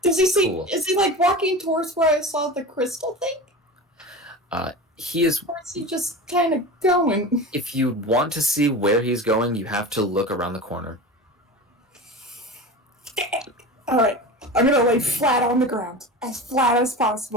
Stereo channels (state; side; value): normal; both; correlation 0.30